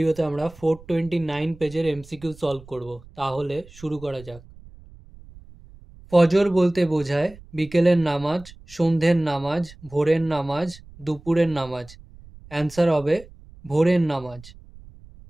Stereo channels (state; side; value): noise; right; rumble, 21 dB below the sound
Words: আমরা 429 পেজের এমসিকিউ সলভ করব। তাহলে শুরু করা যাক। ফজর বলতে বোঝায় বিকেলের নামাজ, সন্ধ্যের নামাজ, ভোরের নামাজ, দুপুরের নামাজ। অ্যান্সার হবে ভোরের নামাজ।